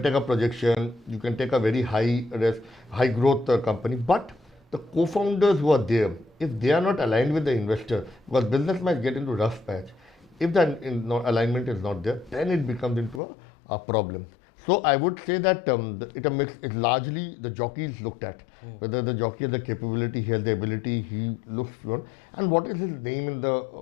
take a projection, you can take a very high risk, high growth company, but the co-founders who are there, if they are not aligned with the investor, because business might get into rough patch. If the alignment is not there, then it becomes into a problem. So I would say that it's largely the jockey is looked at, whether the jockey has the capability, he has the ability, he looks for, and what is his name in the,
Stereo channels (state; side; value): drops out; right; at 13.2 s